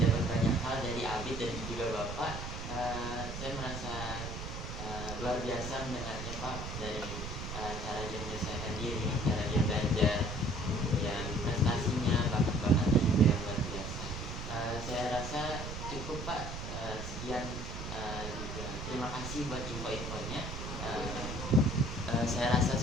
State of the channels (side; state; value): right; noise; rumble, 7 dB below the sound